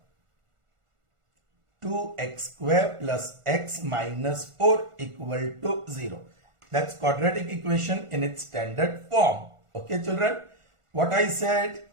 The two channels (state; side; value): late; left; 1.4 ms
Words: 2x square plus x minus 4 equal to 0. That's quadratic equation in its standard form. Okay children, what I said,